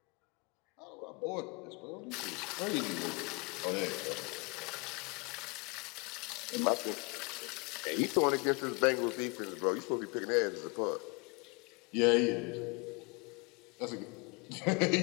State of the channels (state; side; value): quieter; right; 30.5 dB